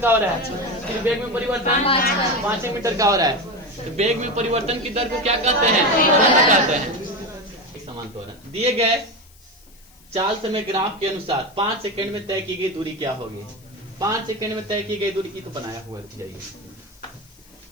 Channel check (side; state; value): left; noise; hiss, 27 dB below the sound